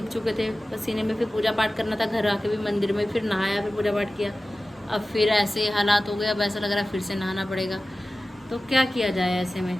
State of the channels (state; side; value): normal; both; correlation 0.96